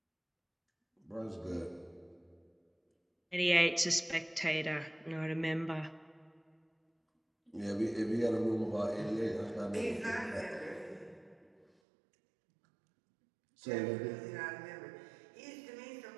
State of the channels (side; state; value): left; drops out; at 11.7 s